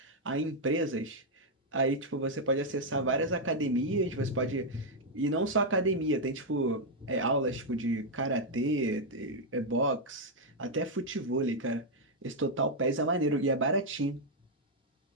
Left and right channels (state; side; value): normal; both; correlation -0.02